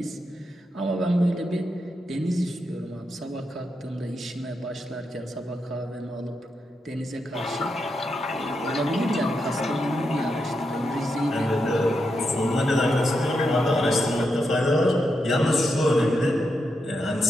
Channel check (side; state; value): both; normal; correlation 0.84